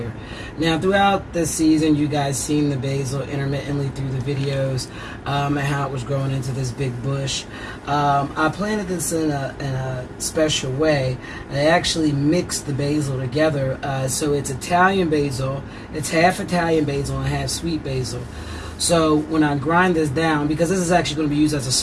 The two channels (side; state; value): both; identical; correlation 1.00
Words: Now, throughout this season, you guys seen the basil intermittently through the videos and how it was growing into this big bush. I planted this in a special way. I actually mixed the basil together, so it's Italian basil. It's half Italian basil and half sweet basil. So when I grind this down, because this is actually going to be used as a